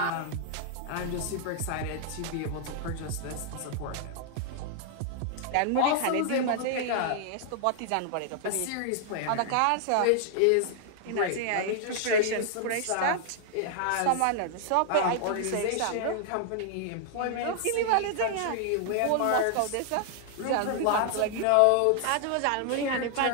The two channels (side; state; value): both; different; correlation 0.00